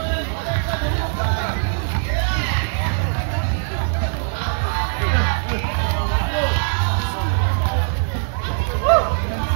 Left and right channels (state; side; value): silent; left; digital silence